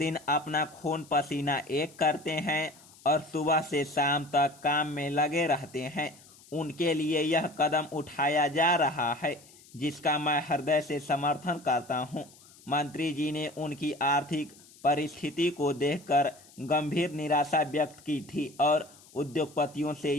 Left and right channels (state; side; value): noise; left; hiss, 24 dB below the sound